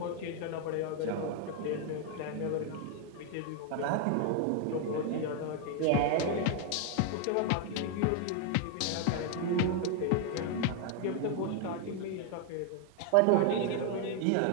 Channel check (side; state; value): both; different; correlation 0.01